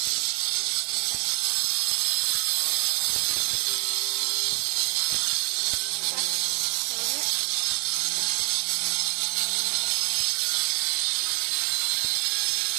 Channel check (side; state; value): left; quieter; 33.0 dB